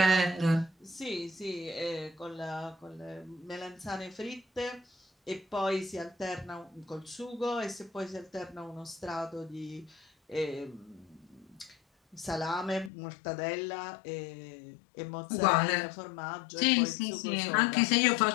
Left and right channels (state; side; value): drops out; right; at 12.9 s